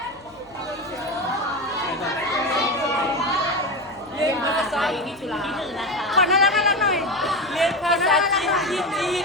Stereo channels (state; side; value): noise; left; hum, 27 dB below the sound